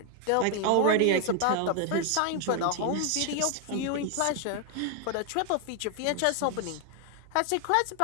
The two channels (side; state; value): both; different; correlation 0.00